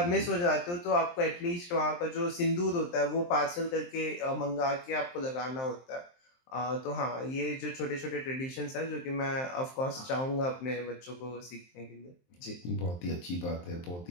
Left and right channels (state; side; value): late; right; 23 ms